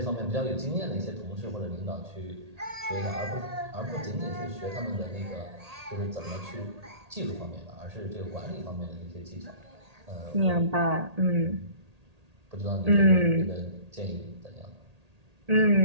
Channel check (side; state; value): left; late; 1.8 ms